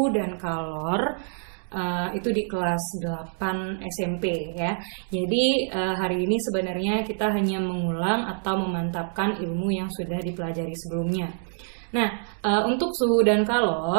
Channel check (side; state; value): left; silent; 61 dB below the other